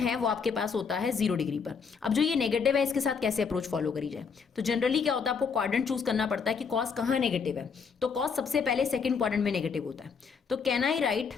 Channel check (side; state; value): right; quieter; 5.8 dB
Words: वो आपके पास होता है 0 डिग्री पर। अब जो ये नेगेटिव है इसके साथ कैसे अप्रोच फॉलो करी जाए, तो जनरली क्या होता है, आपको क्वाड्रेंट चूज करना पड़ता है कि कॉस कहाँ नेगेटिव है। तो कॉस सबसे पहले सेकंड क्वाड्रेंट में नेगेटिव होता है। तो can I write